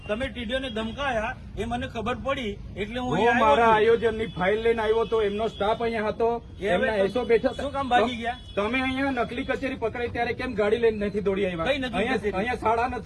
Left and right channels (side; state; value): both; identical; correlation 1.00